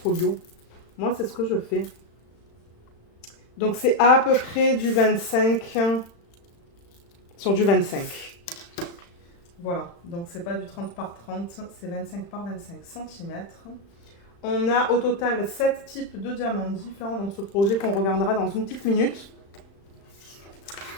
moi c'est ce que je fais. Donc, c'est à peu près du 25 sur du 25. Voilà. Donc, c'est pas du 30 par 30, c'est 25 par 25 cm. On a au total 7 types de diamants différents dans ce projet qu'on regardera dans une petite minute.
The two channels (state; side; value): late; right; 35 ms